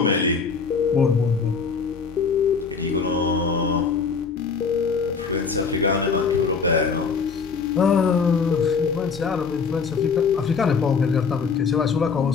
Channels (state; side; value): quieter; right; 5.4 dB